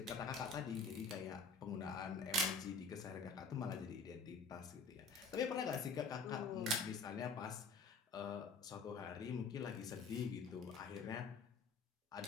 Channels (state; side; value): quieter; right; 4.2 dB